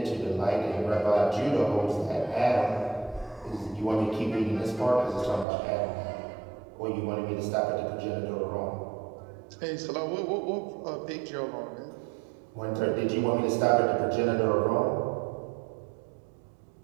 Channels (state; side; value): drops out; left; at 5.5 s